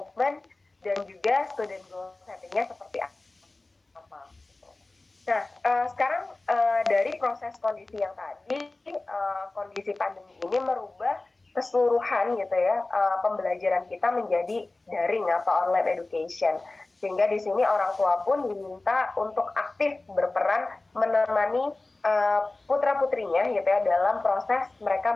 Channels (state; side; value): quieter; right; 3.1 dB